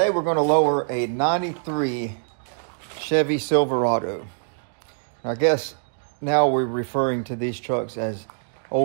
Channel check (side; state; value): left; silent; digital silence